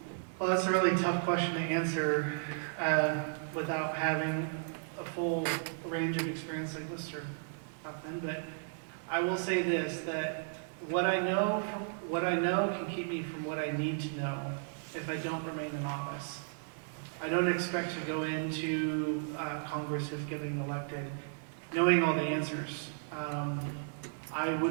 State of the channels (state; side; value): silent; left; digital silence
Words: Well, that's a really tough question to answer without having a full range of experience like Mr. Huffman. But I will say this: that what I know can keep me from what I need to know if I don't remain in office. I don't expect to go into Congress if getting elected knowing all the answers. I